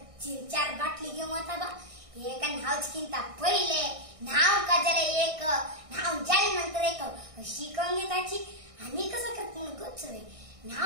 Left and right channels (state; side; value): late; left; 1.6 ms